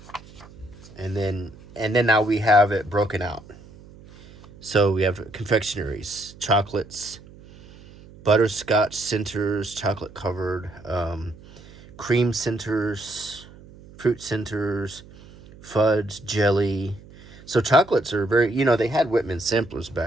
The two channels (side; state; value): right; noise; hum, 21 dB below the sound